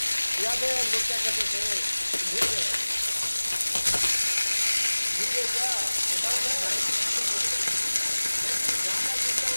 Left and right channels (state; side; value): inverted; both; correlation -1.00